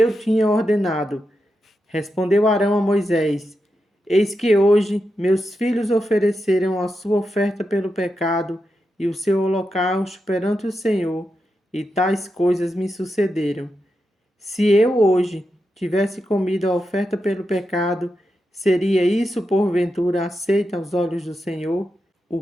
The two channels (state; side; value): normal; both; correlation 0.87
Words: tinha ordenado. Respondeu Arão a Moisés: Eis que hoje meus filhos ofereceram a sua oferta pelo pecado e o seu holocausto perante o Senhor, e tais coisas me sucederam. Se eu hoje tivesse comido a oferta pelo pecado, seria isso porventura aceito aos olhos do Senhor? O